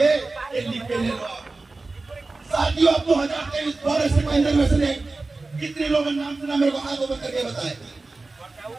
ये लिख के ले लो। साथियों, अब 2023 फॉरेस्ट कंजर्वेशन एक्ट कितने लोगों ने नाम सुना? मेरे को हाथ ऊपर करके बताए।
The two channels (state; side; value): quieter; left; 3.5 dB